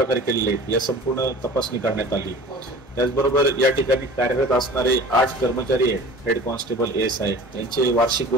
केलेले या संपूर्ण तपासणी करण्यात आली। त्याचबरोबर या ठिकाणी कार्यरत असणारे 8 कर्मचारी आहेत, हेड कॉन्स्टेबल ASI यांचे वार्षिक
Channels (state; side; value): normal; both; correlation 0.42